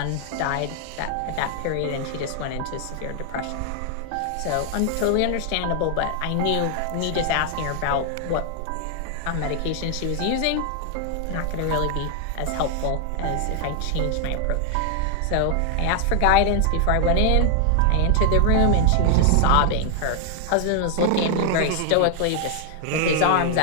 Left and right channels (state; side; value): different; both; correlation 0.00